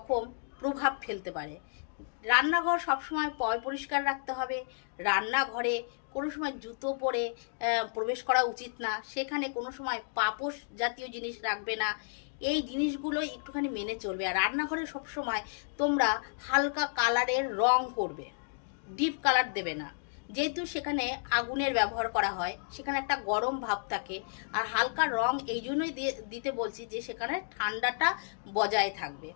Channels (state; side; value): silent; right; digital silence